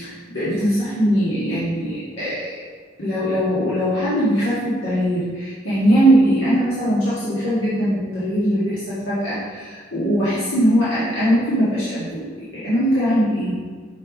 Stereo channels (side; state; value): both; normal; correlation 0.72